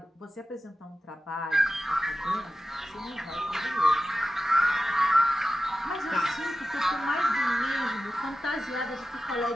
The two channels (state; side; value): normal; both; correlation 0.94